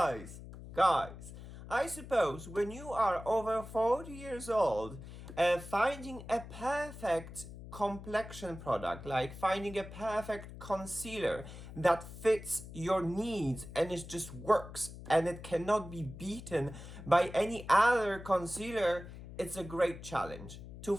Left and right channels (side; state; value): left; noise; hum, 13 dB below the sound